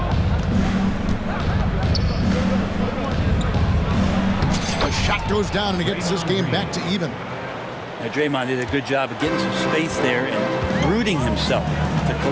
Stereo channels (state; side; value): identical; both; correlation 1.00